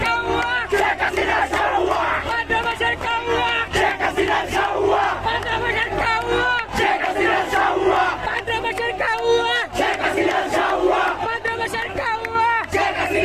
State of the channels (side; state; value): both; identical; correlation 1.00